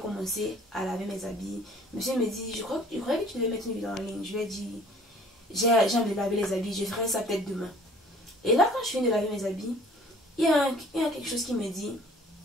à laver mes habits. Monsieur me dit, je crois que tu devais mettre une vidéo en ligne. Je lui ai dit, j'ai envie de laver les habits. Je ferai ça peut-être demain. Et là, quand je finis de laver mes habits, il y a quelque chose qui me dit,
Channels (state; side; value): normal; both; correlation 0.53